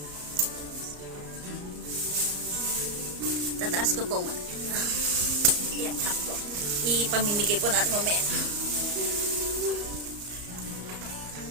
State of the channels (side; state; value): left; late; 34 ms